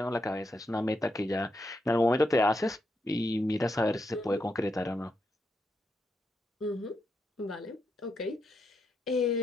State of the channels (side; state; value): both; normal; correlation 0.82